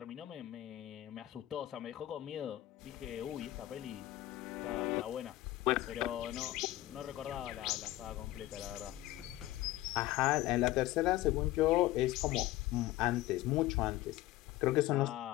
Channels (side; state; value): right; quieter; 16.0 dB